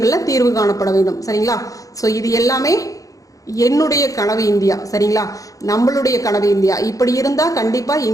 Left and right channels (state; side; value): late; right; 0.17 ms